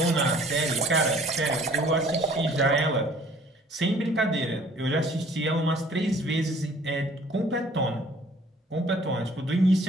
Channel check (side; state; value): both; normal; correlation 0.55